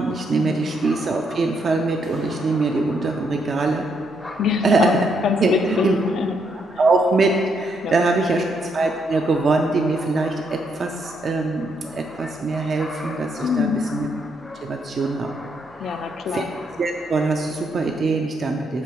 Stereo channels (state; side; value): normal; both; correlation 0.76